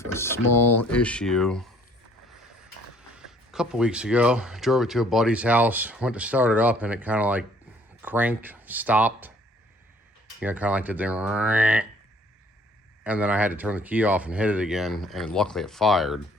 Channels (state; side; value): normal; both; correlation 0.59